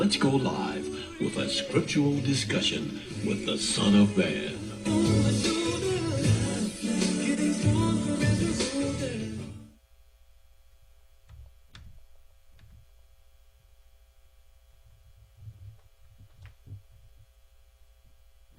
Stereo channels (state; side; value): identical; both; correlation 1.00